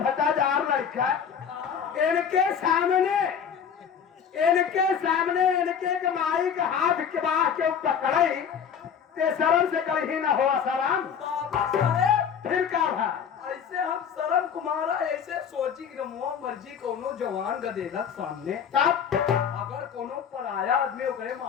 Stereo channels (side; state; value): right; quieter; 7.5 dB